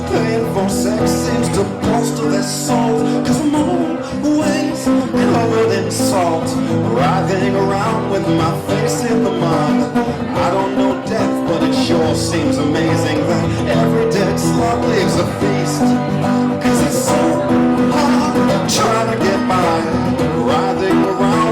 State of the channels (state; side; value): identical; both; correlation 1.00